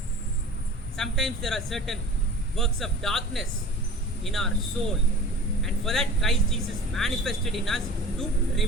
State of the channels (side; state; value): both; normal; correlation 0.40